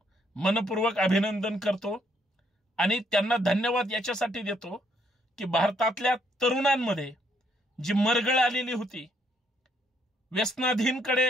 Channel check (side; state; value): both; normal; correlation 0.71